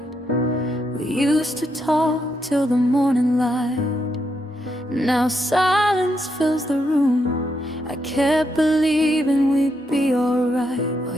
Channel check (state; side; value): normal; both; correlation 0.80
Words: We used to talk till the morning light, now silence fills the room. I kept believing we'd be alright, while